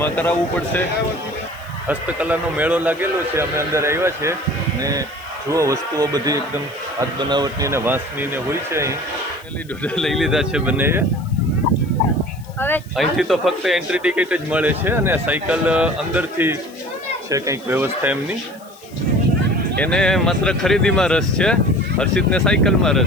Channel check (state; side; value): noise; left; hiss, 25 dB below the sound